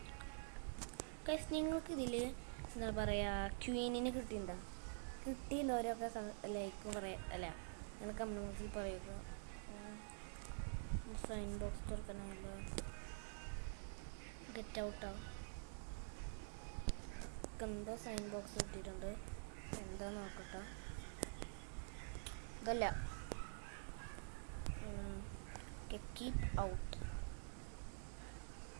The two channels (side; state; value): left; silent; digital silence